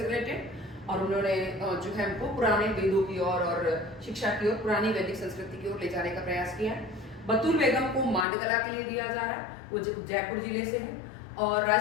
रिलेटेड और उन्होंने जो है हमको पुराने वेदों की ओर और शिक्षा की ओर, पुरानी वैदिक संस्कृति की ओर ले जाने का प्रयास किया है। बतूल बेगम को मांडकला के लिए दिया जा रहा है, वो जयपुर जिले से है। और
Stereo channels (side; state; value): right; drops out; at 8.2 s